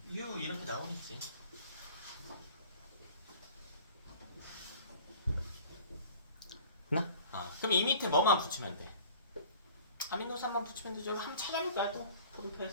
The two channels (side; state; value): both; inverted; correlation -0.47